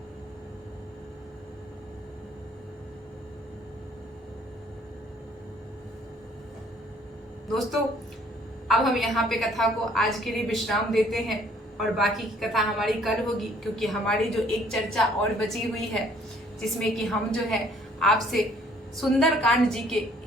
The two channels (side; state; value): both; normal; correlation 0.60